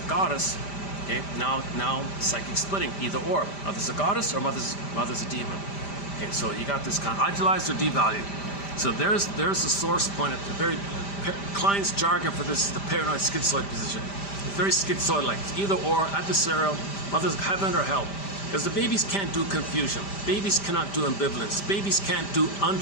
a goddess. Okay, now psychic splitting, either or. Mother's a goddess or mother's a demon. Okay, so you got this kind of idealized or devalued. So there's the source point of the very Klein's jargon for this is the paranoid schizoid position. It's very schizoid-like. It's either or, adversarial, mother's heaven or hell. Because the babies can't do confusion. Babies cannot do ambivalence. Babies can't do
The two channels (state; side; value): late; right; 5.0 ms